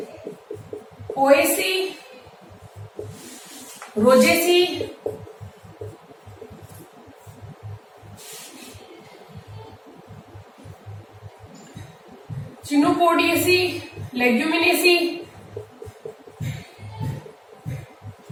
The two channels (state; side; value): identical; both; correlation 1.00